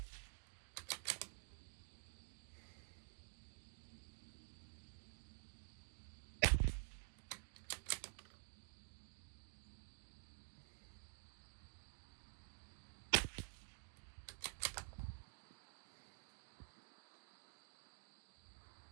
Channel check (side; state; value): left; silent; digital silence